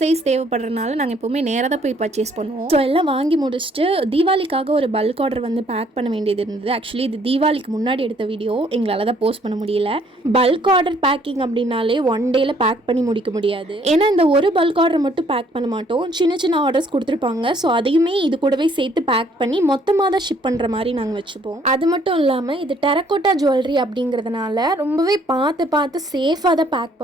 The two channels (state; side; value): normal; both; correlation 0.63